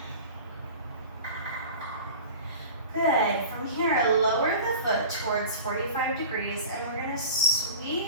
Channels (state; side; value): inverted; both; correlation -0.38